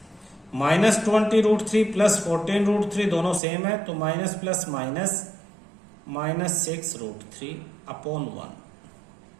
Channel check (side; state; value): left; drops out; at 3.4 s